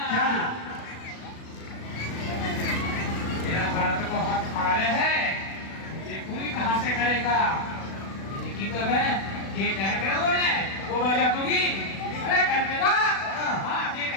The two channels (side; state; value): right; late; 36 ms